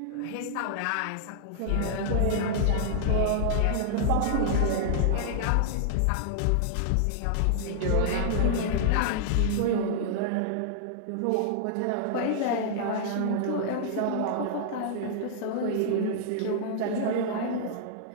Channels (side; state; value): both; different; correlation -0.01